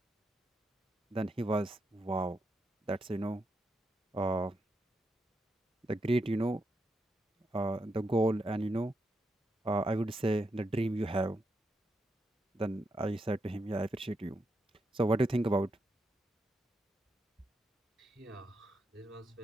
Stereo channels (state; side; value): normal; both; correlation 0.83